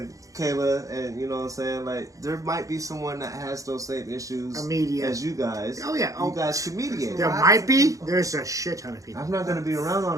Kayla, and you know what I'm saying? Like, there might be someone that has those same issues as you guys. Oh, yeah. You guys can mediate. There might be. There's a shit ton of people. I'm not going to be around all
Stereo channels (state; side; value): late; left; 0.16 ms